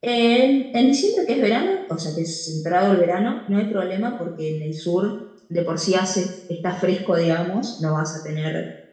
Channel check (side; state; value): both; identical; correlation 1.00